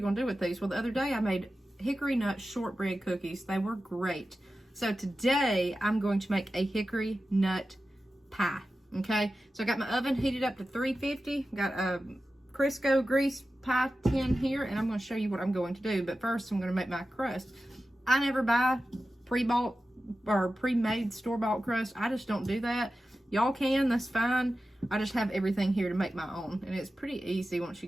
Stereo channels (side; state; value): both; normal; correlation 0.93